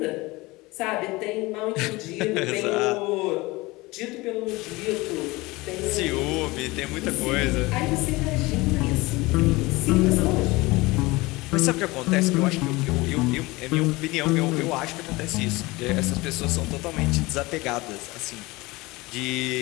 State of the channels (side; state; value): right; quieter; 22.1 dB